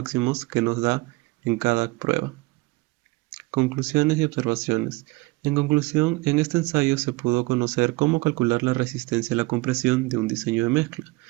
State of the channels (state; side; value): quieter; left; 23.3 dB